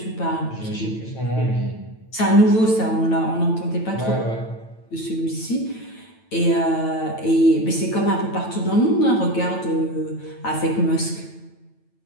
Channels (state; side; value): late; right; 9.1 ms